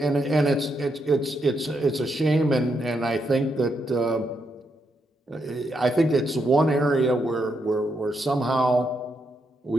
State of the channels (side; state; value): both; normal; correlation 0.80